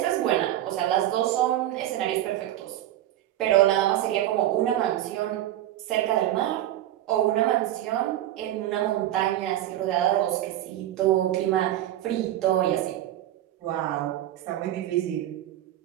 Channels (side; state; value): left; quieter; 13.3 dB